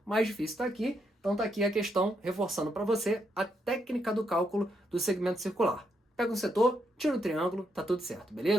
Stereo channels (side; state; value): both; normal; correlation 0.78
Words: O mais difícil está aqui, então está aqui a questão reforçando para você a técnica do cálculo do segmento circular. Pega um setor, tira o triângulo, tá tudo certo,